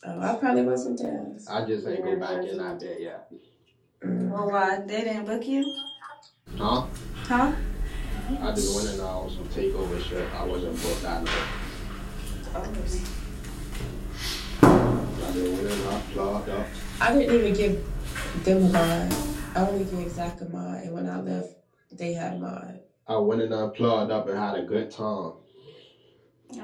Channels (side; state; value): both; identical; correlation 1.00